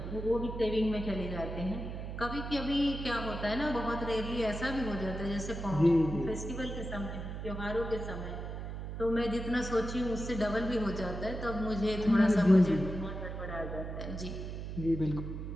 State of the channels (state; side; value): noise; right; hum, 6 dB below the sound